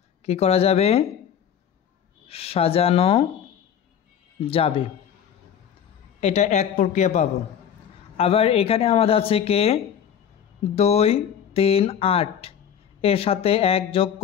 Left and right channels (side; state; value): right; quieter; 8.6 dB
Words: কি করা যাবে, সাজানো যাবে। এটা এক প্রক্রিয়া পাবো। আবার এখানে আমাদের আছে 2, 3, 8 এর সাথে 1 যোগ